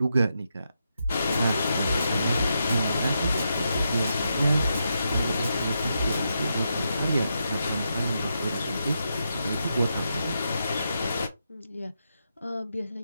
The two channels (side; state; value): both; inverted; correlation -0.84